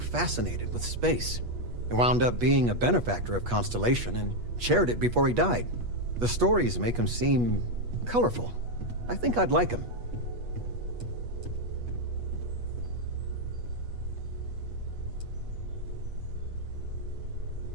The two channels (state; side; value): late; left; 8.3 ms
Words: with space. He wound up being a benefactor of Constellation and chaired it before he died. The stories make him seem colorful. I think I'd like him.